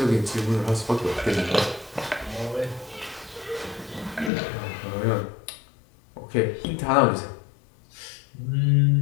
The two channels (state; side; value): drops out; right; at 4.3 s